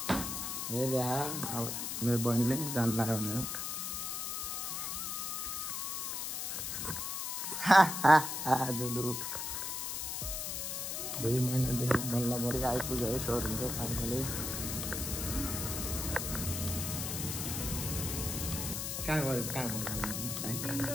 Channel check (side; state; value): left; noise; hiss, 3 dB below the sound